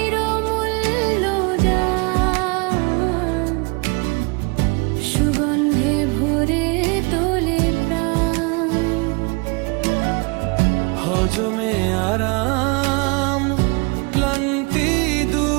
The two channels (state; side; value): quieter; left; 30.3 dB